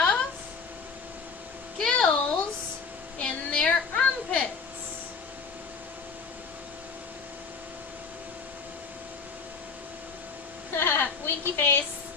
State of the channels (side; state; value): right; quieter; 5.2 dB